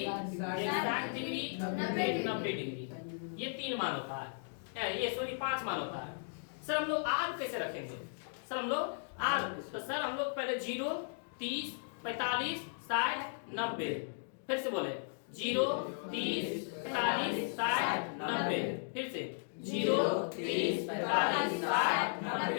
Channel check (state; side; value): silent; right; digital silence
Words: एक 60 डिग्री, एक 90 डिग्री। ये तीन मान होता है। ये सॉरी 5 मान होता है। सर हम लोग आज कैसे रखेंगे? सर हम लोग आज तो सर हम लोग पहले 0, 30, 45, 60, 90। फिर से बोले 0, 30, 45, 60, 90। फिर से 0, 30, 45, 60,